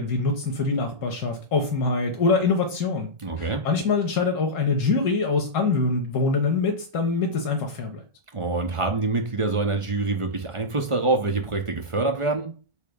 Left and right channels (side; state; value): left; late; 1.4 ms